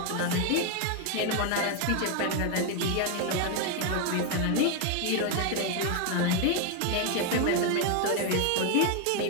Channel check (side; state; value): both; different; correlation 0.01